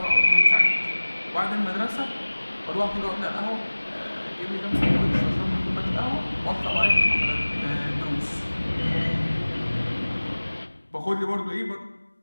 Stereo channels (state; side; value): inverted; both; correlation -1.00